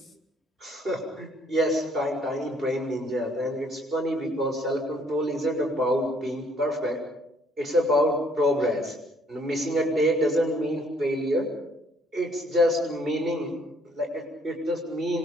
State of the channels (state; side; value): normal; both; correlation 0.63